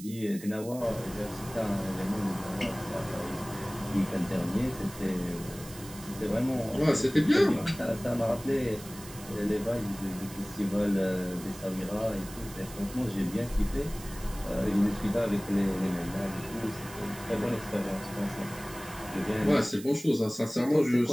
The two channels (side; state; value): right; noise; hiss, 16 dB below the sound